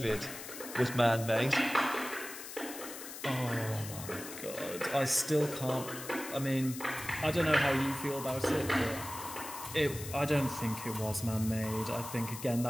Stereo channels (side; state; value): left; noise; hiss, 11 dB below the sound